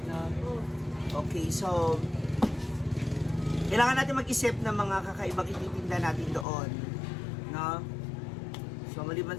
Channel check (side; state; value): right; drops out; at 6.5 s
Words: na. Okay, so kailangan natin mag-isip ng mga kakaibang ititinda natin doon, no? So,